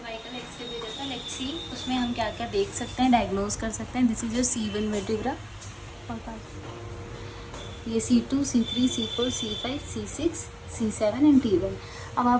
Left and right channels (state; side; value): identical; both; correlation 1.00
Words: x ray भेजा था लेट्स सी उसमें हम क्या क्या देख सकते हैं, डायग्नोज कर सकते हैं। This is your C1 vertebra, ये C2, C3, C4, C5, C6, C7 and T1। अब